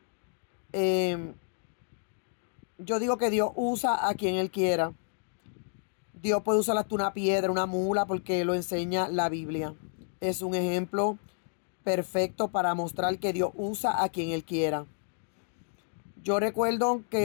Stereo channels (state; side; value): silent; right; digital silence